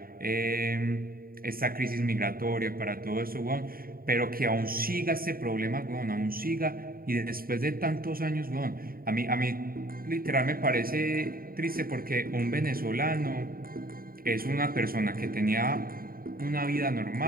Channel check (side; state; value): left; late; 0.43 ms